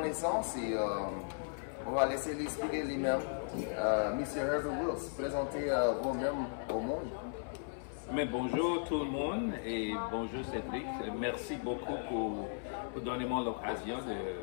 et on va laisser l'expliquer lui-même. Monsieur Herbert Wills, présentez vous-même au monde. Mais bonjour tout le monde et bonjour Cédric. Merci beaucoup pour donner moi l'occasion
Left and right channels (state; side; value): silent; right; 53 dB below the other